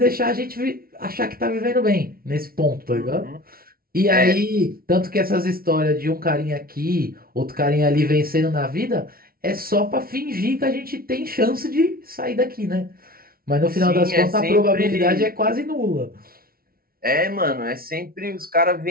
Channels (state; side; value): late; left; 0.43 ms